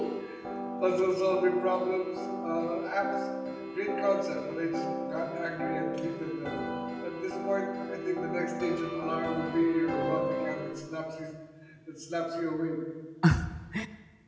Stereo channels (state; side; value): identical; both; correlation 1.00